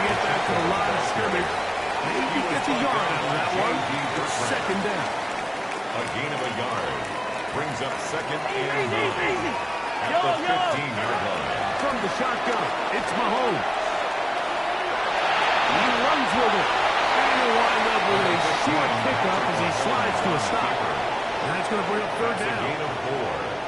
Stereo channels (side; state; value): both; identical; correlation 1.00